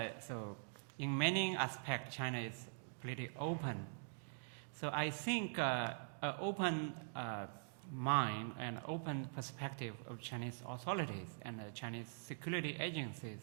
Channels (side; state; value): left; silent; digital silence